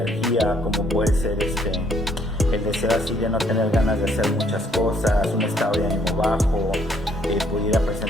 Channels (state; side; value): normal; both; correlation 0.67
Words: como puede ser el deseo así de no tener ganas de hacer muchas cosas, un estado de ánimo bajo, pudiera